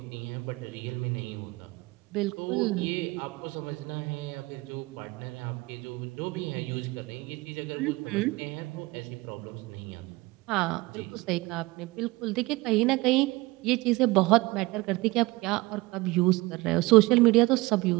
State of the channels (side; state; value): left; quieter; 22.0 dB